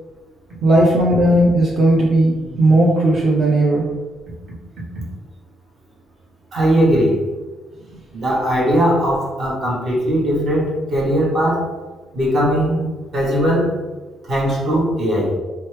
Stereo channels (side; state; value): both; normal; correlation 0.76